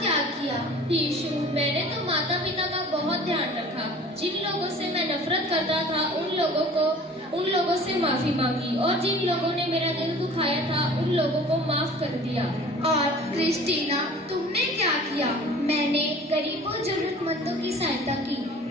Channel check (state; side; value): normal; both; correlation 0.45